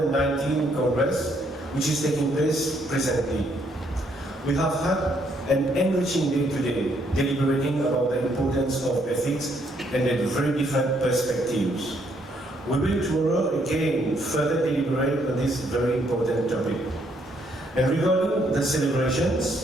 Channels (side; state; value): both; normal; correlation 0.71